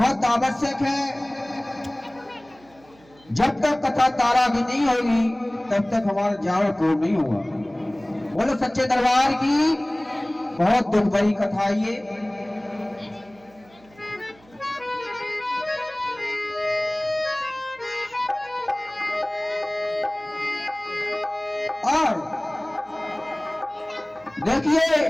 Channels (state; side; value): noise; right; hum, 28 dB below the sound